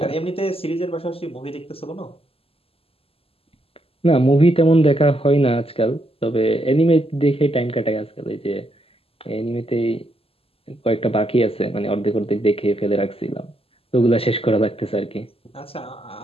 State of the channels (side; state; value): right; late; 0.28 ms